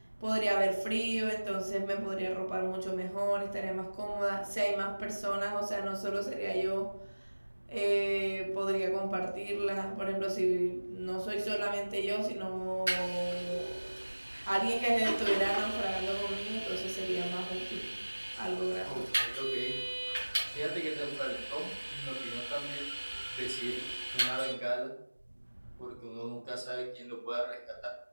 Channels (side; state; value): both; inverted; correlation -1.00